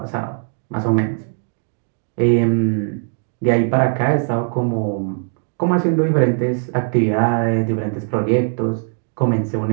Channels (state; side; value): silent; left; 59 dB below the other